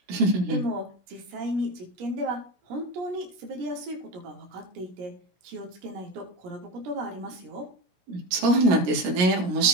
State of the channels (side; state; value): left; late; 16 ms